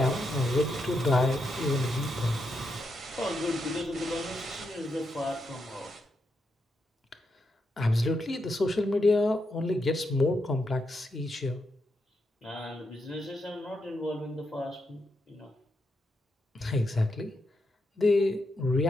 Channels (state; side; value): normal; both; correlation 0.83